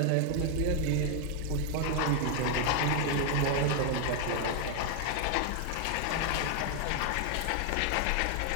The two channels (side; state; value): both; different; correlation 0.00